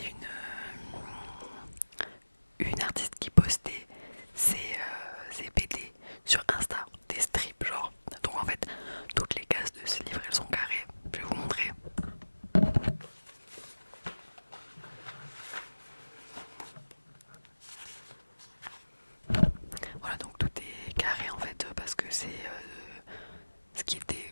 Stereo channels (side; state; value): both; inverted; correlation -1.00